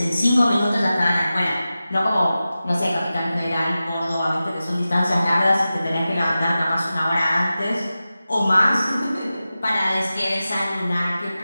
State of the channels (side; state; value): both; inverted; correlation -0.94